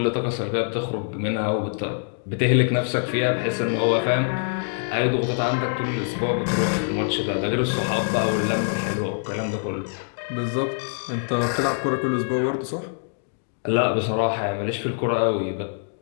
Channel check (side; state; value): right; silent; digital silence